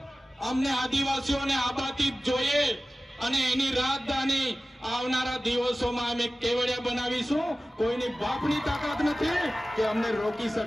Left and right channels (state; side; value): normal; both; correlation 0.96